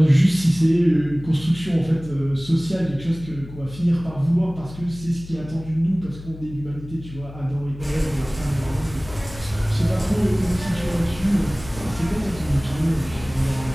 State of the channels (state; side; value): noise; left; hum, 15 dB below the sound